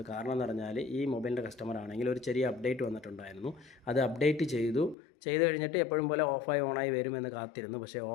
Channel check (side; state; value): right; drops out; at 5.0 s